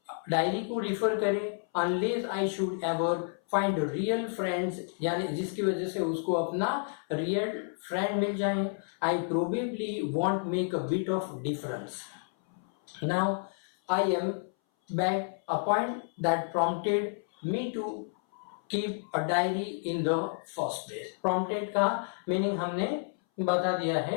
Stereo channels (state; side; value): silent; right; 58 dB below the other